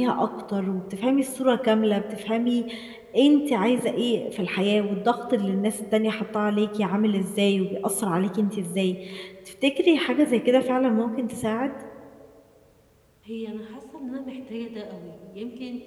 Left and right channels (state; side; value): identical; both; correlation 1.00